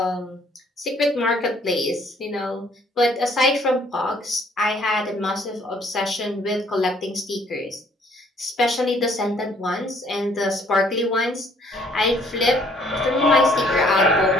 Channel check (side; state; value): both; normal; correlation 0.62